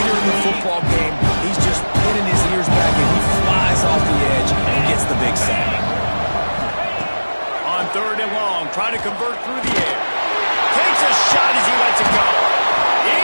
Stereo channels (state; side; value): inverted; both; correlation -1.00